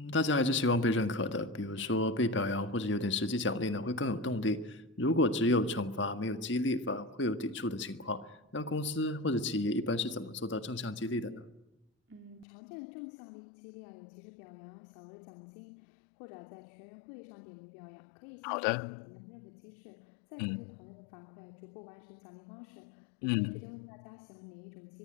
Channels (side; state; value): right; drops out; at 12.5 s